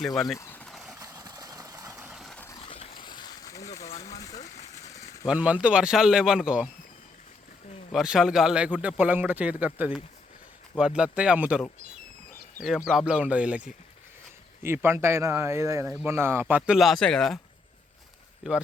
ఇవన్నీ 1 మంత్ వర్షాలు లేవనుకో, వర్షాలు గాలి లేకుంటే పొలం కూడా చేతికి వస్తుంది, వడ్లు వస్తాయి, అమ్ముతారు, ఏం ప్రాబ్లం ఉండదు వీళ్ళకి. ఈ పంట అయినా ఏదైనా మొన్న పత్తులు లాసే కదా, ఈ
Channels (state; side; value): quieter; right; 3.9 dB